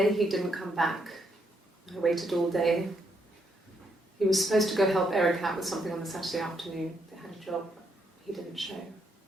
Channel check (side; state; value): both; normal; correlation 0.76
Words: he didn't come back. I waited all day. He was supposed to go help Eric out with something on the Saturday afternoon. They had a job. He didn't show.